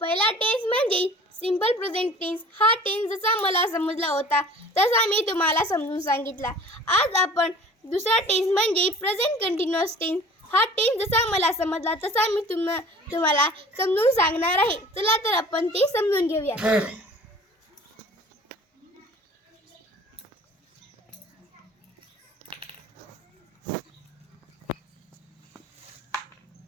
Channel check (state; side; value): normal; both; correlation 0.46